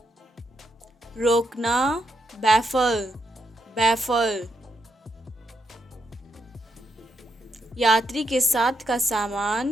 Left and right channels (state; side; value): normal; both; correlation 0.80